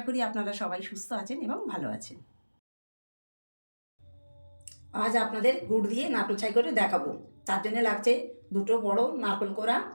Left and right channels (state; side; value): inverted; both; correlation -1.00